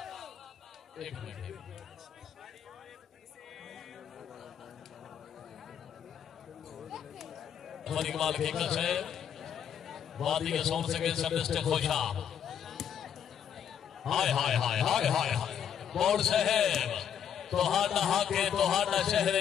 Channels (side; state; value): right; quieter; 8.7 dB